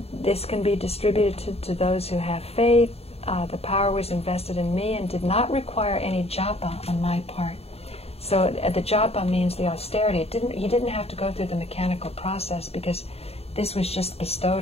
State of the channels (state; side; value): late; right; 0.29 ms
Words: this can be distributed to those who have faith. The power was invested in me and did not require any japa on my part. So the japa means the austerity. He didn't have to go through the mechanical process, because this was just